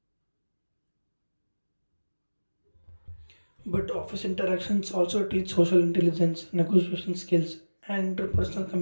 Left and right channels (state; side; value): inverted; both; correlation -1.00